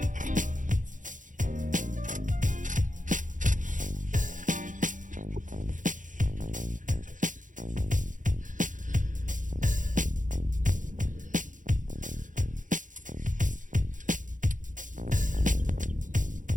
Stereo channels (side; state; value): left; late; 0.37 ms